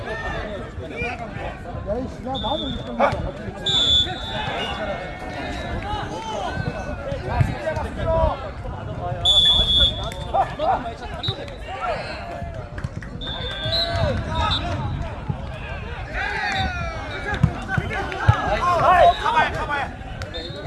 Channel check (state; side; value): identical; both; correlation 1.00